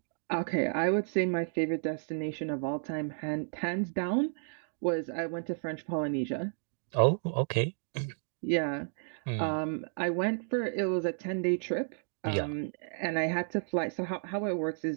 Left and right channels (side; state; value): left; silent; digital silence